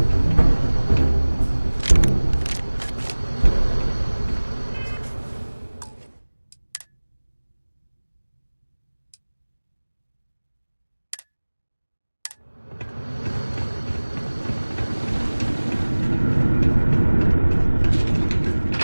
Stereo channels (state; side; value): inverted; both; correlation -1.00